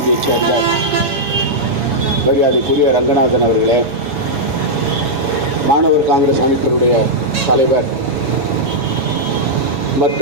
சேர்ந்த மரியாதைக்குரிய ரங்கநாதன் அவர்களே, மாணவர் காங்கிரஸ் அமைப்பினுடைய தலைவர்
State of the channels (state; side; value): late; left; 7.2 ms